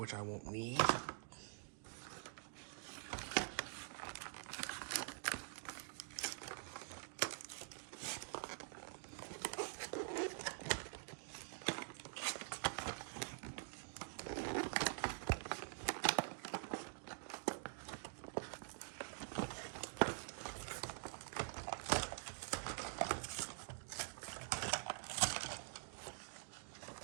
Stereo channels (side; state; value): left; silent; digital silence